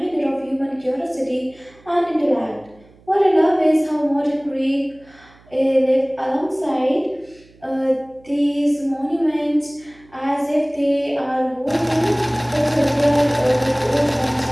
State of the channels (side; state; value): right; noise; hum, 28 dB below the sound